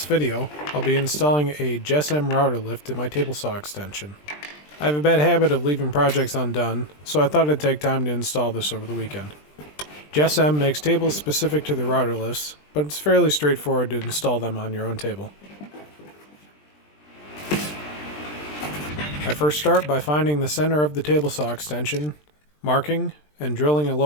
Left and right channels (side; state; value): right; late; 20 ms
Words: video, I'll be installing a JessEm Rout-R-Lift in my table saw extension. I have a bad habit of leaving projects undone, so I thought I'd take time to install this over the weekend. JessEm makes tables specific to the Rout-R-Lifts, but it's fairly straightforward to install them on your own table. I first start by finding the center of the table saw extension, marking, and drilling a